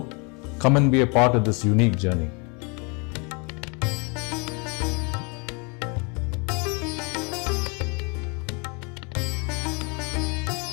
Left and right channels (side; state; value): right; quieter; 32.8 dB